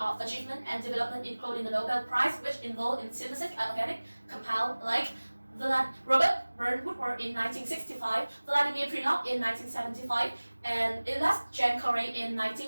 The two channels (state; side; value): inverted; both; correlation -1.00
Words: achievement and development, including the Nobel Prize, which involved in synthesis of organic compounds like Robert Woodward in 1965, Vladimir Prilov in 1975, and Elias James Corey in